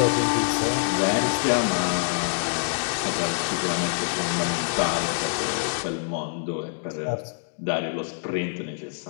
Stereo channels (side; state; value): right; silent; digital silence